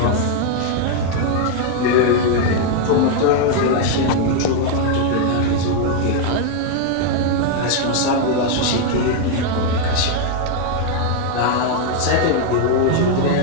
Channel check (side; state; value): both; different; correlation 0.00